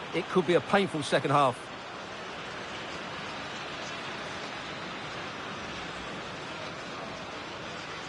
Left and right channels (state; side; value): identical; both; correlation 1.00